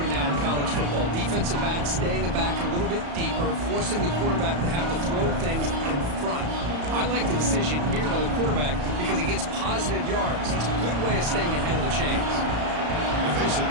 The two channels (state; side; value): late; left; 34 ms